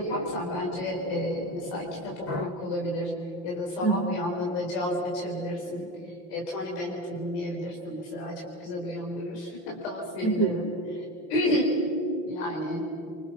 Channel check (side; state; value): right; late; 5.9 ms